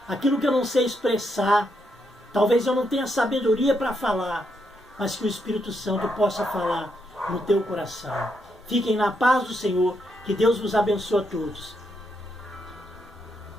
Aquilo que eu não sei expressar, talvez eu não tenha sabedoria para falar, mas que o Espírito Santo possa falar no teu coração. Fiquem na paz do Senhor, que Deus vos abençoe a todos.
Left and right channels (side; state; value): both; normal; correlation 0.79